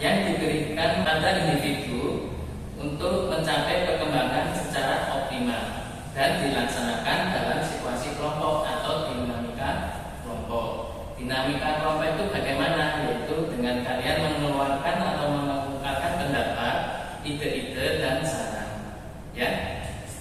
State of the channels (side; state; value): both; identical; correlation 1.00